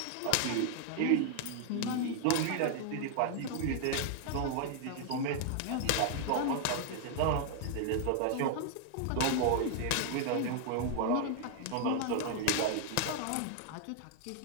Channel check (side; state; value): both; different; correlation 0.00